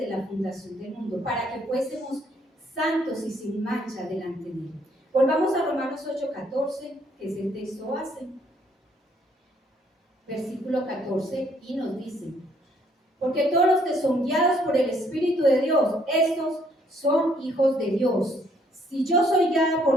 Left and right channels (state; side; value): normal; both; correlation 0.67